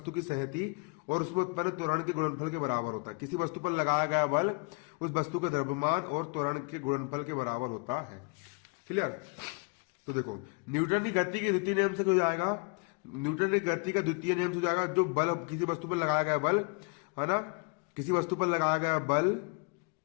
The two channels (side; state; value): right; quieter; 34.5 dB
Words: की सहती और उसमें उत्पन्न त्वरण के गुणनफल के बराबर होता है। किसी वस्तु पर लगाया गया बल उस वस्तु के द्रव्यमान और त्वरण के गुणनफल के बराबर होता है। क्लियर? तो देखो, न्यूटन की गति के द्वितीय नियम से हो जाएगा, न्यूटन की गति का द्वितीय नियम से जाएगा, जो बल किसी वस्तु पर लगाया गया बल, है ना, किसी वस्तु पर लगाया गया बल